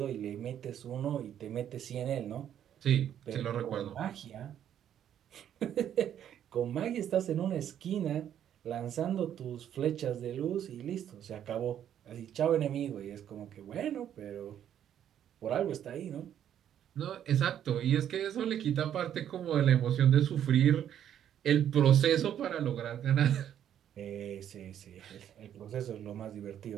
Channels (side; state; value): left; quieter; 10.1 dB